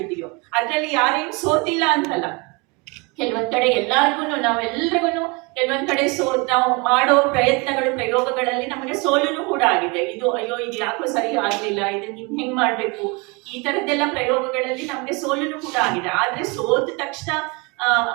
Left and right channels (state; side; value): quieter; left; 28.8 dB